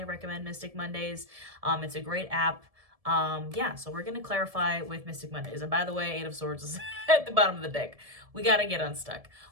recommend Mystic Mondays. It's a great app. Yeah, so we're going to clarify with Mystic Mondays. And by the way, Eight of Swords is at the bottom of the deck. We got to get unstuck.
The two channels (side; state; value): left; late; 1.7 ms